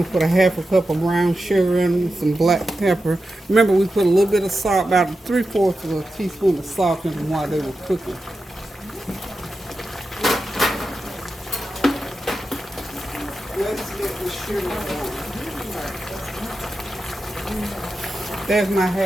to put a half a cup of brown sugar in, some black pepper. Remember, we put a little bit of salt, about 3/4 of a teaspoon of salt in them while they were cooking. Let's get the sugar going. There's my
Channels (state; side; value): normal; both; correlation 0.91